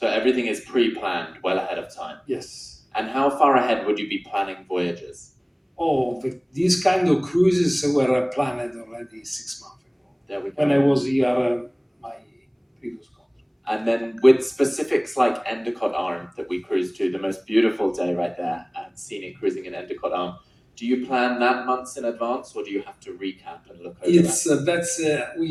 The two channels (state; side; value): identical; both; correlation 1.00